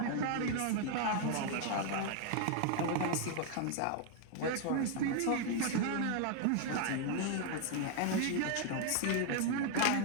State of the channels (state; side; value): different; both; correlation 0.00